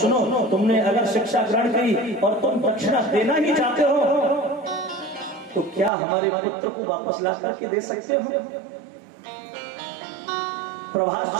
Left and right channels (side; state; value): left; drops out; at 5.9 s